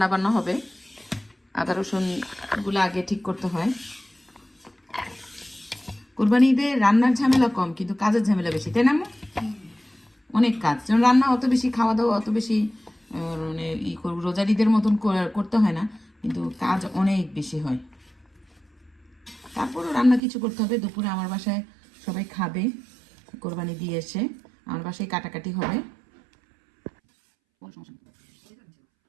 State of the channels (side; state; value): left; drops out; at 20.2 s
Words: বান্না হবে, আদা রসুনগুলো আগে ঠিক করতে হয়। কোরবানি ঈদে রান্নার ঝামেলা কম, কিন্তু কাজের ঝামেলা বেশি, তাই না আম্মু? অনেক কাজ, যেমন রান্না অত বেশি, খাওয়া দাওয়া অত বেশি মানে রোজার ঈদের মতন করতে হয় না, কিন্তু কাজ অনেক বেশি হয়। তারপরও রান্না কিছু করতে হবে। দুপুরে আমার বাসায় সবাই খাবে, কোরবানি দিয়ে এসে আমার বাসায় কাটাকাটি হবে।